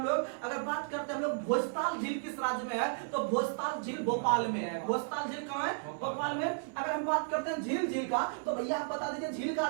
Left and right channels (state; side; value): silent; left; 55 dB below the other